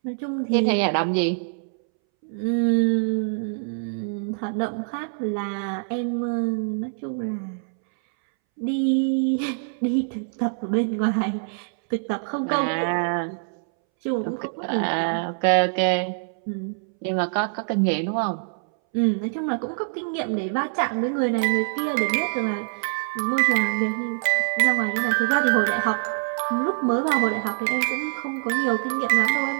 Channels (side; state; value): left; silent; 62 dB below the other